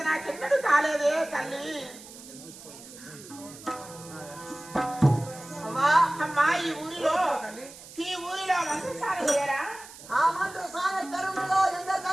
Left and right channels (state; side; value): noise; right; hiss, 17 dB below the sound